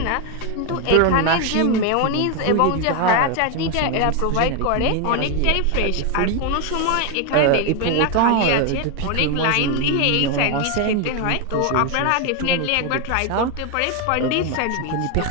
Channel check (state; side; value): different; both; correlation 0.01